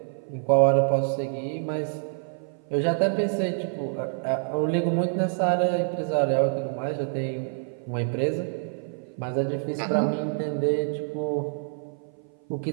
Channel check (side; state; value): left; silent; 57 dB below the other